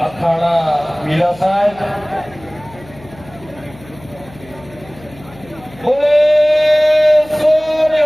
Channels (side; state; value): left; noise; hum, 22 dB below the sound